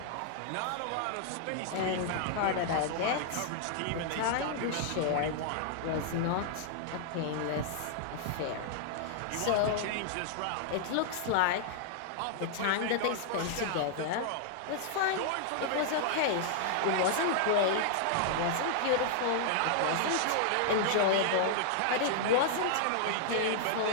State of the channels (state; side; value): different; both; correlation -0.01